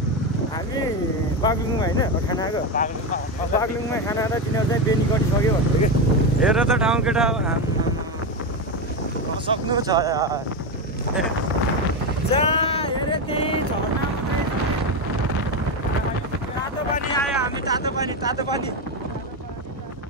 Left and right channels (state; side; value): normal; both; correlation 0.13